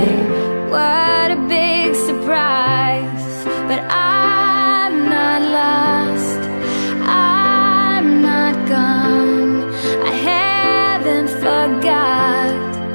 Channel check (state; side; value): inverted; both; correlation -1.00